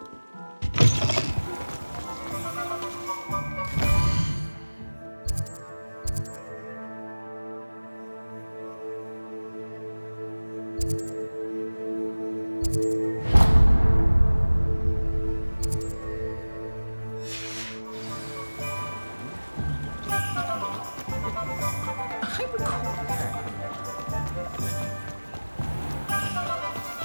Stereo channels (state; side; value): inverted; both; correlation -1.00